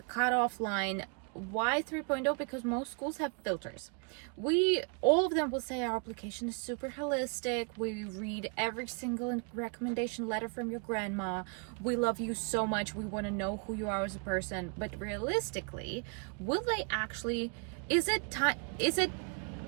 cutoff line. Why 3.0? Because most schools have filters. All of them will say our application is super holistic. We read every single recommendation letter from your grandma. We love you so much. We want to know who you are as a person. But realistically, will they actually, is it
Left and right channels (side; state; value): left; quieter; 38.1 dB